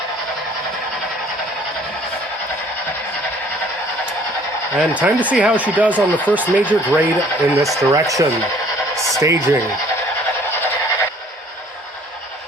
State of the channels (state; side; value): normal; both; correlation 0.56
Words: And time to see how she does on the first major grade in this direction. Staging.